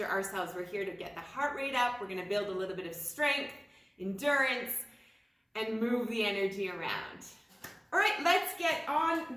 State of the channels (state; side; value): identical; both; correlation 1.00